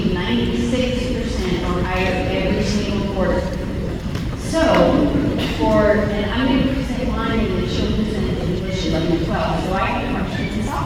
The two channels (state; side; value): identical; both; correlation 1.00